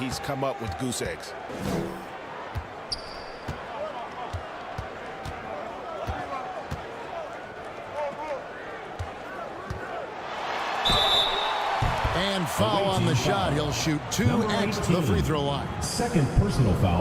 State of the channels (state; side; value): identical; both; correlation 1.00